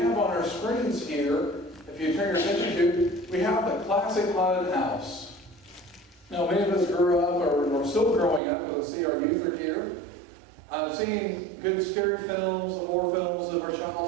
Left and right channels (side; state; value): left; drops out; at 8.4 s